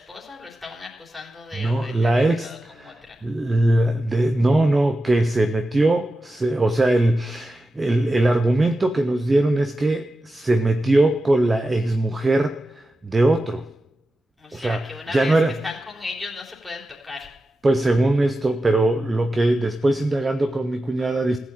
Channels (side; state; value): both; normal; correlation 0.92